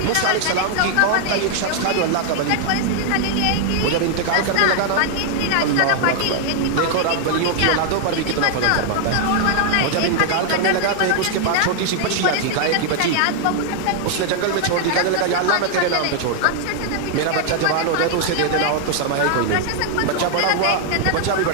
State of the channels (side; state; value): both; different; correlation 0.00